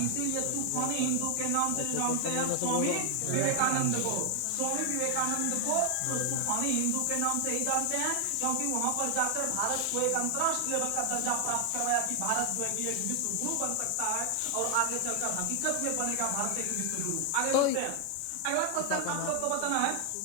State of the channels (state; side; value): different; both; correlation 0.00